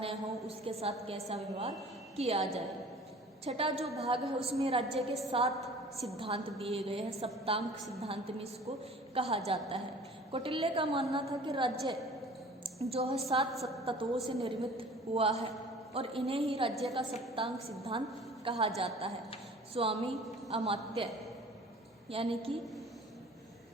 हो उसके साथ कैसा व्यवहार किया जाए। छठा जो भाग है उसमें राज्य के 7 सिद्धांत दिए गए हैं, सप्तांक सिद्धांत में इसको कहा जाता है। कौटिल्य का मानना था कि राज्य जो है 7 तत्वों से निर्मित हुआ है और इन्हें ही राज्य का सप्तांक सिद्धांत कहा जाता है। स्वामी अमात्य यानी कि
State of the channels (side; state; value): both; normal; correlation 0.46